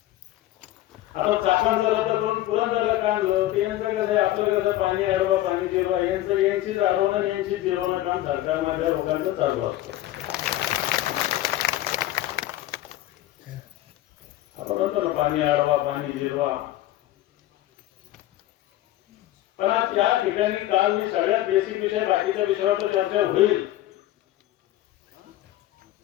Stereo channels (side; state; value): right; quieter; 14.8 dB